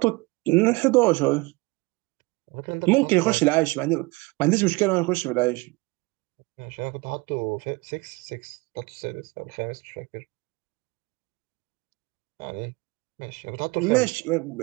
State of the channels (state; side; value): quieter; left; 25.1 dB